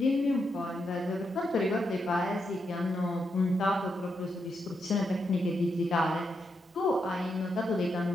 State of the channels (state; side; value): normal; both; correlation 0.83